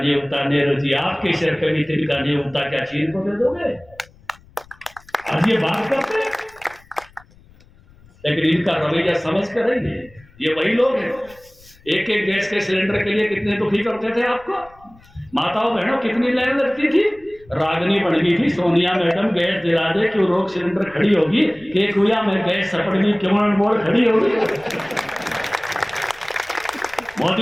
उगता। नेहरू जी आपके सिर पे भी तिनका नहीं उगता, क्या चीन को दे दोगे? आज ये बात करते हैं, लेकिन इनका रवैया समझ कर रही है। ये वही लोग हैं, एक एक गैस के सिलेंडर के लिए कितने दुखी करते थे आपको। माताओं बहनों कितनी लाइन लगती थी, रागनी बन गई थी। सोनिया मैडम गैस दिला दे क्यों रोक सिलेंडर खड़ी होगी, केक हुआ में गैस सपड़नी क्यों मोड़ खड़ी होगी।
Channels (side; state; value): left; noise; rumble, 27 dB below the sound